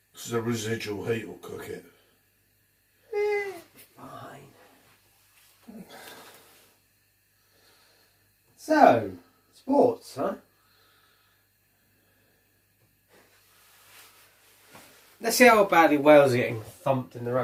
Because the residual heat will cook it. Fine. So, sports, huh? Let's see how badly Wales are getting thumped in the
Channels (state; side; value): identical; both; correlation 1.00